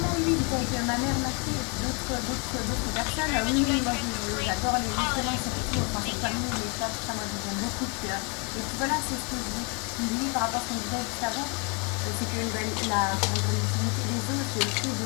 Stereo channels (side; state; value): right; quieter; 34.1 dB